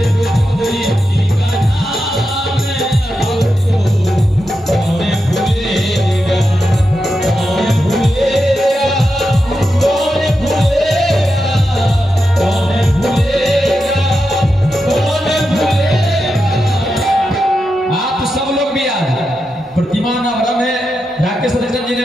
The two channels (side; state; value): both; normal; correlation 0.88